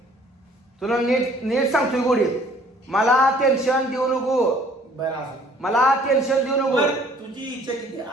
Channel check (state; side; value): normal; both; correlation 0.57